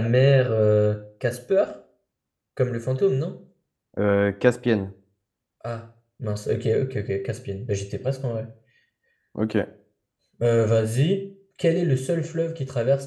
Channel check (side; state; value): both; identical; correlation 1.00